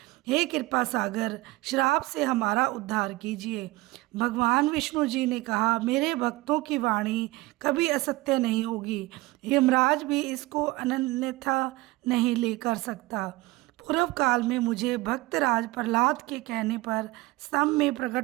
हे कृपा सागर, श्राप से हमारा उद्धार कीजिए। भगवान विष्णु जी ने कहा, मेरे भक्तों की वाणी कभी असत्य नहीं होगी। यमराज भी इसको अन्यथा नहीं ले कर सकता। पूर्व काल में मुझे भक्तराज प्रहलाद के कहने पर स्तंभ में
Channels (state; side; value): quieter; left; 20.4 dB